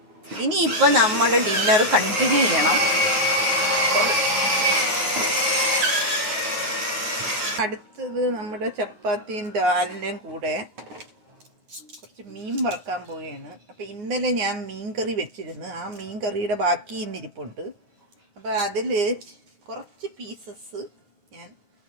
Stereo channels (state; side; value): late; left; 9.5 ms